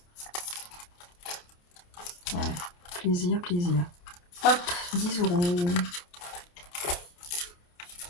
Ouais. Plaisir. Hop, 10 euros.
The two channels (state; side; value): late; right; 28 ms